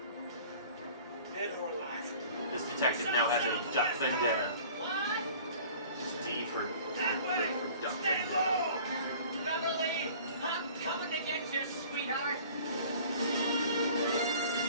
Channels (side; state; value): both; inverted; correlation -0.47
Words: Dead or alive. This detective now has a duck vendetta. What? It's D for That way. duck Stay vendetta. low. Beverly, I'm coming to get you, sweetheart.